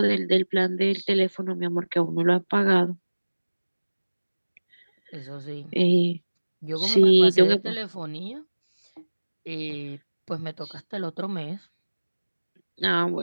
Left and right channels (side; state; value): both; inverted; correlation -1.00